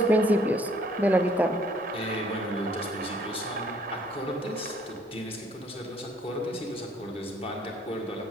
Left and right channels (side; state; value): both; normal; correlation 0.62